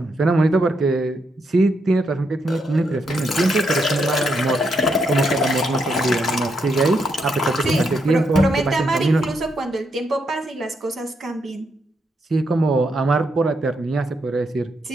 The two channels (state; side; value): normal; both; correlation 0.79